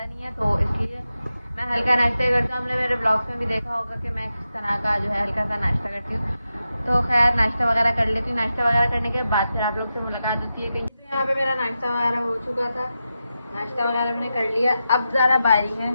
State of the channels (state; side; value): inverted; both; correlation -0.90